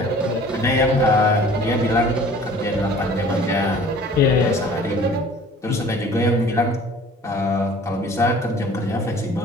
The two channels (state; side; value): normal; both; correlation 0.49